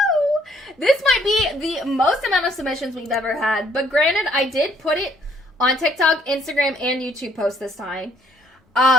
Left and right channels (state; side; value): normal; both; correlation 0.66